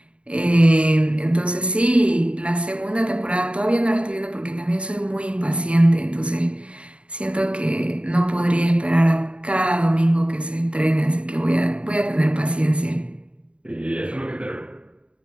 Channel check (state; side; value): late; left; 0.058 ms